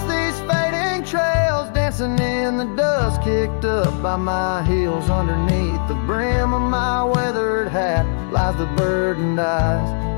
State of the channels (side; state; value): right; silent; digital silence